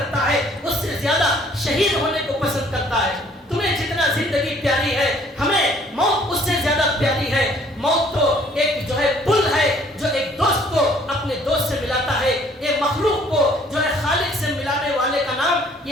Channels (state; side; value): normal; both; correlation 0.59